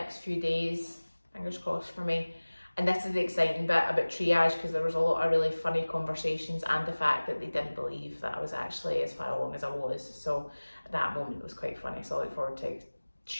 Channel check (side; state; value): both; inverted; correlation -1.00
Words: few days. Fingers crossed for me. And this is the exciting bit about triage, because there was a lot of really funny conversations and the fact that they didn't believe that I was actually as far along as I was. So that moment was quite funny. So I look forward to